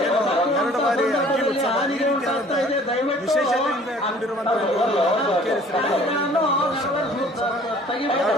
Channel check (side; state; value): both; normal; correlation 0.53